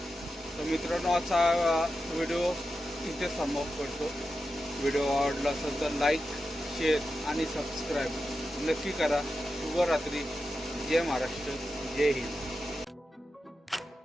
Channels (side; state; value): both; normal; correlation 0.90